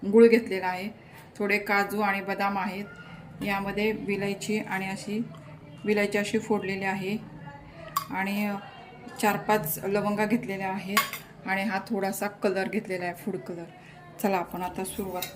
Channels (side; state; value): both; identical; correlation 1.00